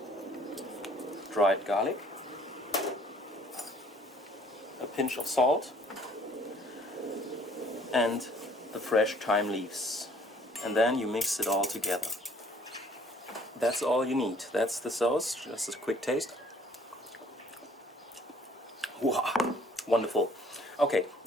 dried garlic, a pinch of salt, and the fresh thyme leaves. And then you mix it all together. That's all you need. That's the sauce. Just a quick taste. Wow, wonderful. Okay,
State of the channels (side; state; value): both; normal; correlation 0.58